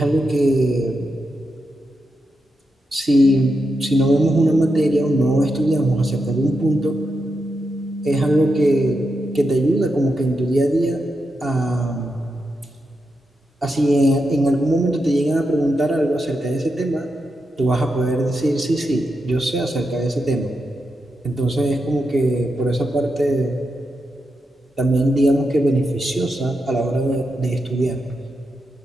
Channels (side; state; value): both; normal; correlation 0.86